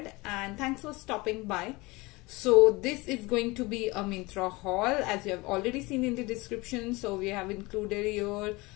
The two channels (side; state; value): right; quieter; 23.4 dB